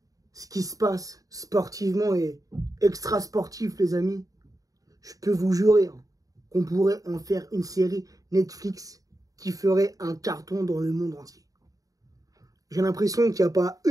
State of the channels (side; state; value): left; late; 0.17 ms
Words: ce qui se passe sportivement et extra-sportif les amis, je peux vous jurer qu'on pourrait en faire une série Netflix qui ferait un carton dans le monde entier. J'ai l'impression qu'il n'y a pas